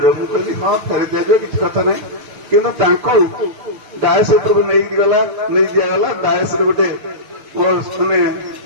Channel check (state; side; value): late; left; 6.8 ms